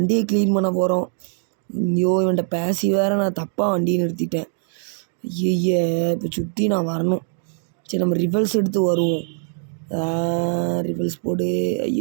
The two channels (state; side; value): silent; left; digital silence